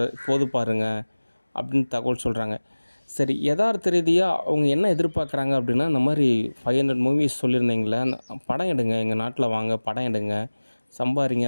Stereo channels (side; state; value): both; inverted; correlation -1.00